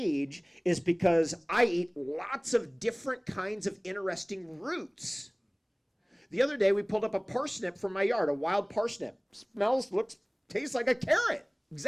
is because I eat lots of different kinds of interesting roots The other day, we pulled up a parsnip from my yard, a wild parsnip. Smells, looks, tastes like a carrot.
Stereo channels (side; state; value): both; identical; correlation 1.00